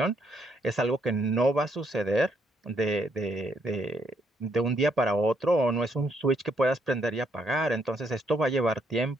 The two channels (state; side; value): normal; both; correlation 0.72